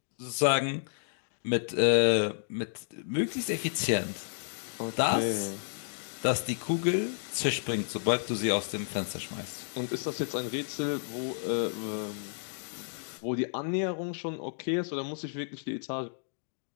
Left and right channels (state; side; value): silent; right; digital silence